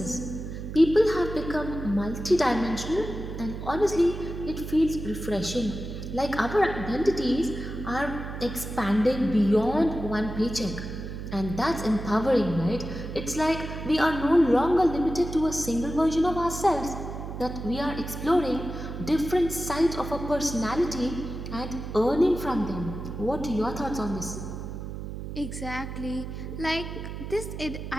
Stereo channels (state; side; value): noise; right; hum, 8 dB below the sound